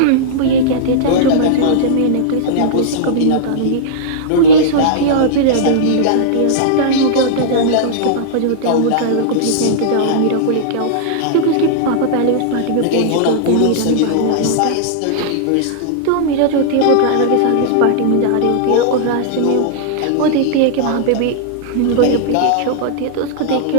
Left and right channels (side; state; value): both; different; correlation -0.02